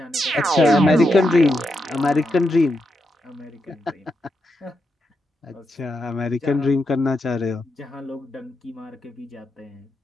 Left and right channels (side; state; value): both; normal; correlation 0.84